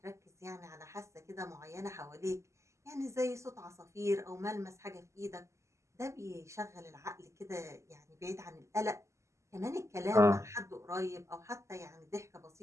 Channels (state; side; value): late; left; 0.14 ms